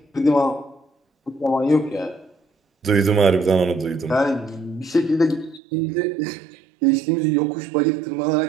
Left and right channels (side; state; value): left; drops out; at 5.6 s